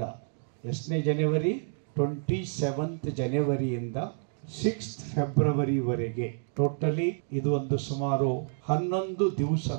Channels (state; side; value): silent; left; digital silence